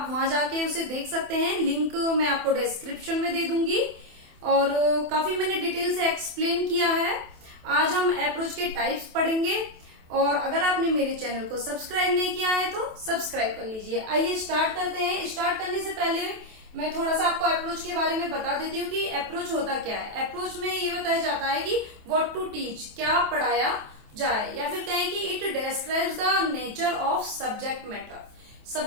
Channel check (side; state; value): left; late; 27 ms